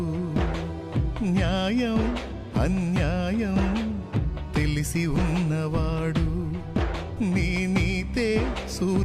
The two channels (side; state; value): both; identical; correlation 1.00